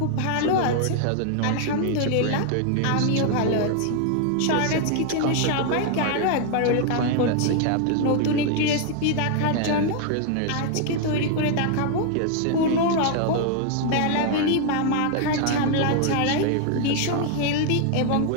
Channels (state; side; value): different; both; correlation 0.00